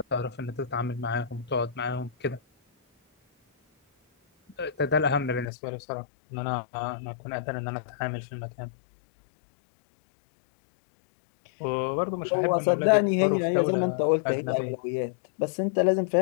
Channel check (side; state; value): right; drops out; at 5.5 s